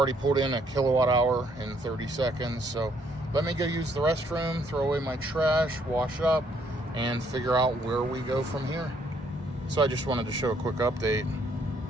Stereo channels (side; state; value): both; normal; correlation 0.68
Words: pulled in a kilowatt hour in 30 seconds, so let me go use the restroom, throw away my trash, wash up, and figure out where we go from here. So I just wanted to show a quick update.